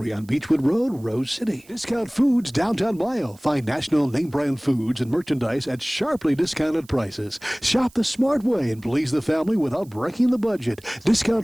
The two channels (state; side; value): noise; right; hiss, 27 dB below the sound